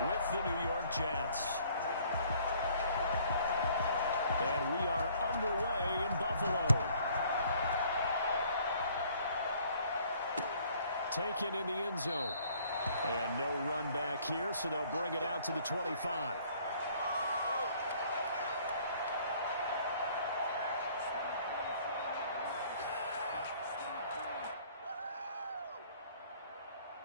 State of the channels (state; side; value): inverted; both; correlation -0.59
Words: with the New York Jets. And we are underway in Buffalo. Taken in the end zone. And no run back here, so they'll bring it out to the 25.